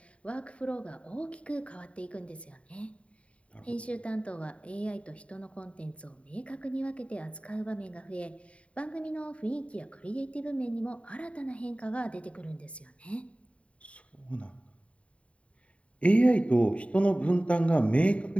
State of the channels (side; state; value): right; late; 0.063 ms